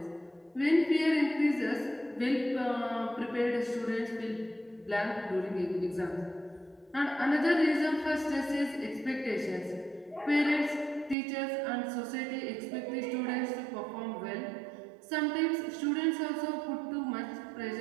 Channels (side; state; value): left; drops out; at 11.2 s